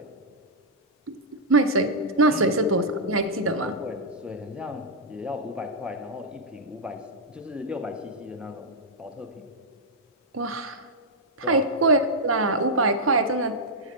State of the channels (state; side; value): normal; both; correlation -0.07